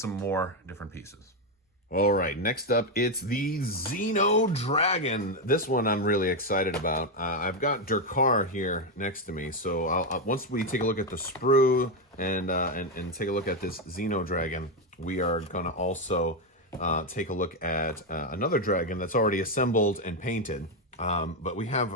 more different pieces. All right, next up, it's the Xeno Dragon. This one I'm really excited about. I've got Durkar here next to me, so once we take a look at the sprue and take a look at this Xeno Dragon, we are going to also take a look at another dragon that's already assembled and painted. But we have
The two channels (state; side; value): normal; both; correlation 0.06